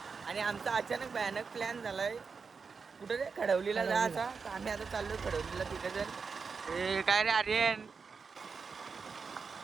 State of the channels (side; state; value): left; quieter; 5.2 dB